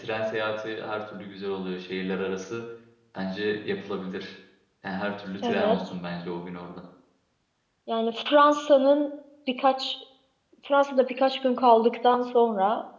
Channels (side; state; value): both; identical; correlation 1.00